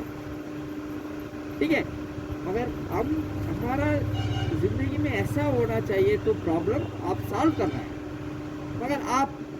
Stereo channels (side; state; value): both; identical; correlation 1.00